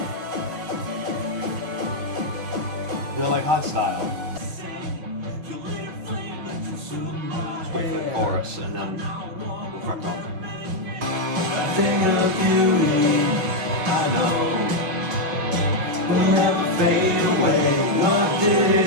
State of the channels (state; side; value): late; left; 6.1 ms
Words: They're like hard style. Just wait for the chorus and then we'll crack on. Thing of beauty, I know, will never fade away. What did